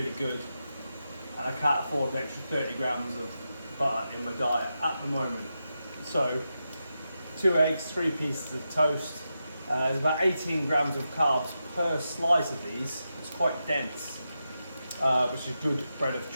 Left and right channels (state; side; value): inverted; both; correlation -0.88